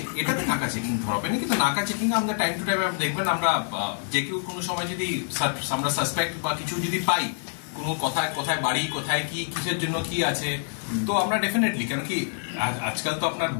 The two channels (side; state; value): right; silent; digital silence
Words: এটাতে নাকা চেকিং ধরবে না, কিন্তু নাকা চেকিং আমাদের টাইম টু টাইম দেখবেন। আমরা যে কেউ কোনো সময় যদি আমরা সাসপেক্ট বা কিছু যদি পাই, কোনো কোথায় বাড়ি, কোথায় কি, কিসের জন্য কি আছে, তো আমরা ডেফিনেটলি, কেন কি আজকাল তো আপনার